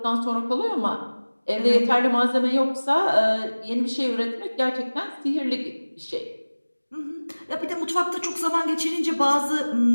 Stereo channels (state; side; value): inverted; both; correlation -1.00